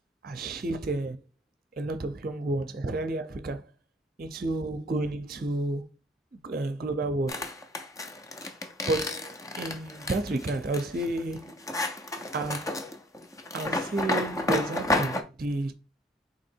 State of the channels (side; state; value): both; normal; correlation 0.56